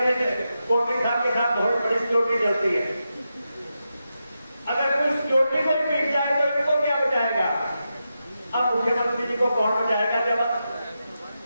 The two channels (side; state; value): both; inverted; correlation -0.88